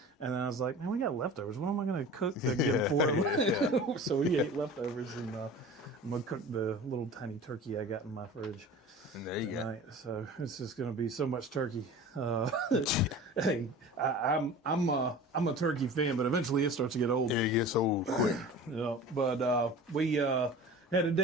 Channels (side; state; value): both; normal; correlation 0.38